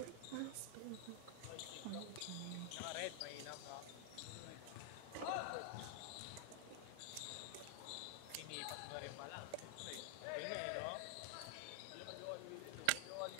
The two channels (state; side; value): different; both; correlation 0.00